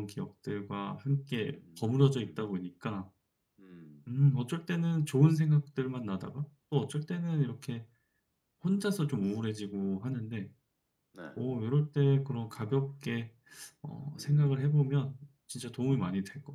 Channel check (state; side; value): identical; both; correlation 1.00